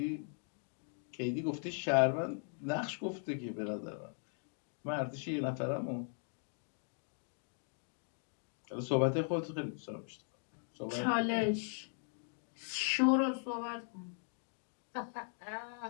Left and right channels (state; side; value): silent; right; 52 dB below the other